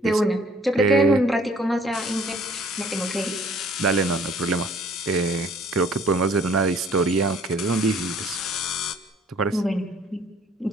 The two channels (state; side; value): normal; both; correlation 0.56